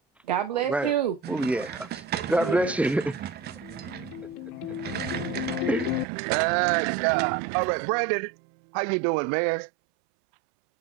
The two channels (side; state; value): left; drops out; at 6.1 s